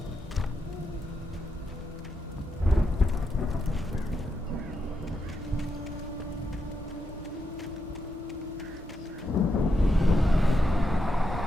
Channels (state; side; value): normal; both; correlation 0.84